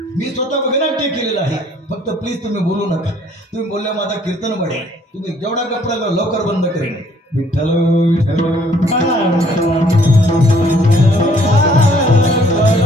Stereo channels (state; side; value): normal; both; correlation 0.61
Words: मी स्वतः वगनाट्य केलेलं आहे. फक्त प्लीज तुम्ही बोलू नका. तुम्ही बोलल्या माझा कीर्तन वाढेल. तुम्ही जेवढा कपडा लवकर बंद करेन. विठ्ठल विठ्ठल